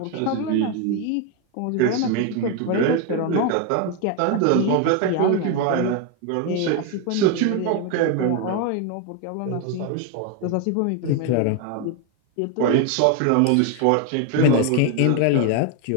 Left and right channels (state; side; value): different; both; correlation 0.01